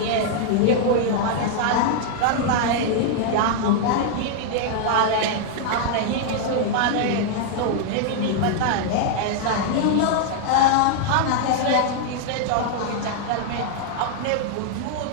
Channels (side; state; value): both; different; correlation -0.01